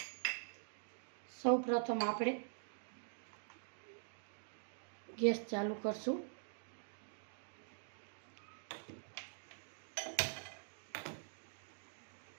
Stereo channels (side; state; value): left; silent; digital silence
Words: સૌ પ્રથમ આપણે ગેસ ચાલુ કરશું.